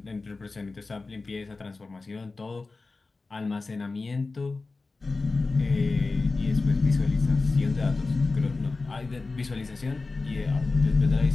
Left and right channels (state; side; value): quieter; right; 3.7 dB